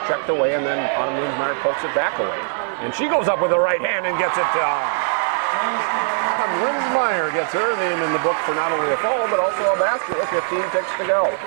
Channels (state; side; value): silent; left; 65 dB below the other